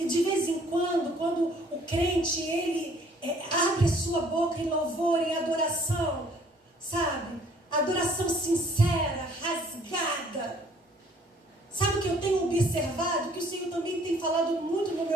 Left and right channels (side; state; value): both; normal; correlation 0.59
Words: de vez em quando o crente, ele abre a sua boca em louvor, em adoração, sabe? Adoração sincera, rasgada. Sabe o que eu tenho observado? Que o Senhor também tem falado muito no